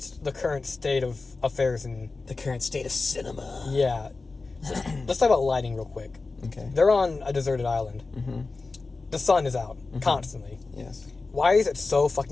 the current state of affairs and the current state of cinema. Yeah. Let's talk about lighting real quick. Okay. They're on a deserted island. Mm-hmm. The sun is out constantly. Yes. why is it so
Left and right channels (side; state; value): right; quieter; 3.8 dB